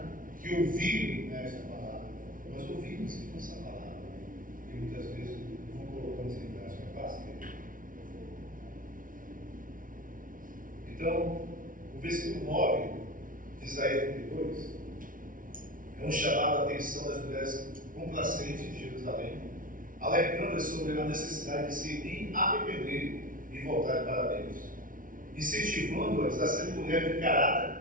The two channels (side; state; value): left; late; 0.39 ms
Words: que ouviram essa palavra. Nós ouvimos essa palavra. E muitas vezes não colocamos em prática. Então, o versículo 9 de Isaías 32 é um chamado à atenção das mulheres complacentes de Jerusalém, alertando sobre a necessidade de se arrepender e voltar para Deus, incentivando-as a ser mulheres de